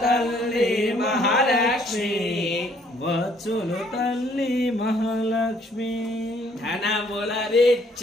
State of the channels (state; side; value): normal; both; correlation 0.63